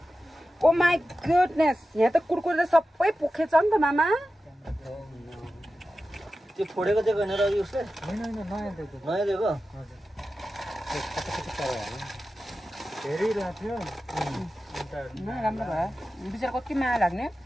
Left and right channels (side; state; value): both; normal; correlation 0.93